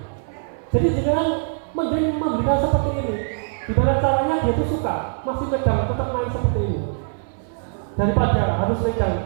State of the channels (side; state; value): left; silent; 59 dB below the other